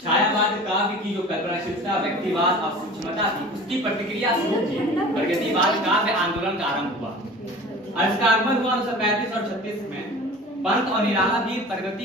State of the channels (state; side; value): normal; both; correlation 0.40